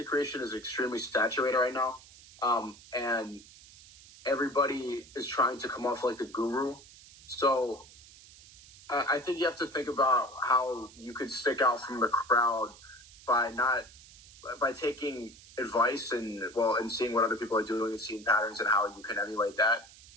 creation is extremely saturated right now, and everybody is trying to come off like the guru. So I think you have to think about how you could stick out from the crowd by taking advice and seeing what other people are doing and seeing patterns and how you can emulate that,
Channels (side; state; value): right; noise; hiss, 21 dB below the sound